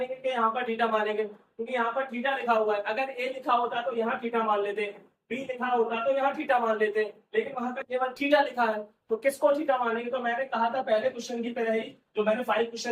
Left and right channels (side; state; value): both; identical; correlation 1.00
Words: कि यहाँ पर थीटा मानेंगे? क्योंकि यहाँ पर थीटा लिखा हुआ है, अगर ए लिखा होता तो यहाँ थीटा मान लेते, बी लिखा होता तो यहाँ थीटा मान लेते, लेकिन वहां पर केवल थीटा लिखा है, तो किसको थीटा मानेंगे? तो मैंने कहा था पहले क्वेश्चन की तरह ही, जो मैंने 5